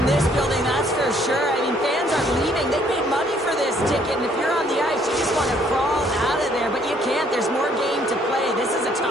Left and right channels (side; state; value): both; normal; correlation 0.64